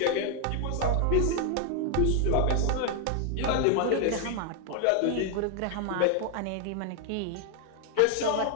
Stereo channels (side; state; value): both; different; correlation 0.00